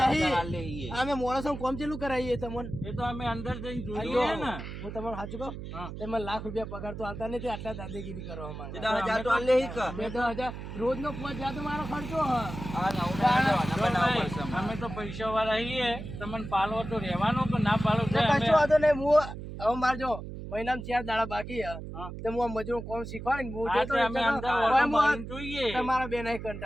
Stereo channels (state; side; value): noise; right; hum, 9 dB below the sound